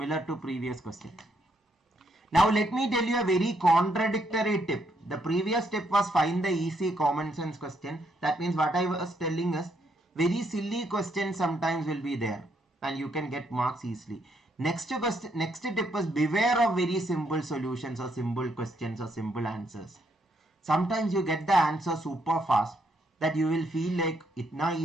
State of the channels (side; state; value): both; normal; correlation 0.74